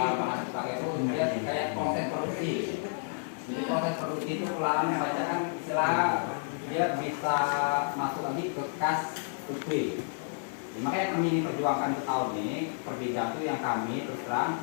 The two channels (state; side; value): silent; right; digital silence